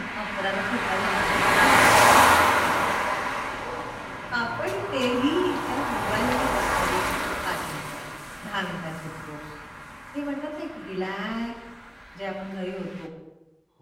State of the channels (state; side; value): identical; both; correlation 1.00